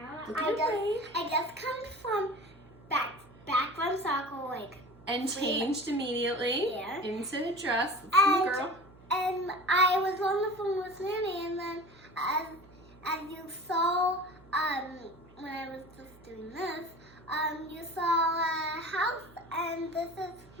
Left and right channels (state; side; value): noise; right; hum, 24 dB below the sound